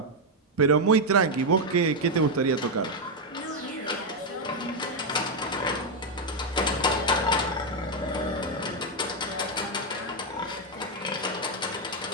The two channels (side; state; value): both; normal; correlation 0.02